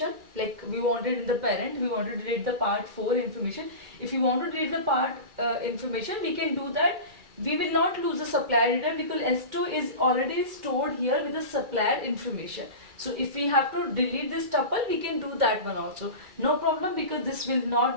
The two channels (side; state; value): left; late; 2.3 ms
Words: like we wanted in the parent, we want to delete the part 4 information. If we want to delete the part information, we can do that. We will not lose the supplier data because S2 is already stored here with the supplier information. So if we have to delete this tuple, we can do that one also. No problem, because this will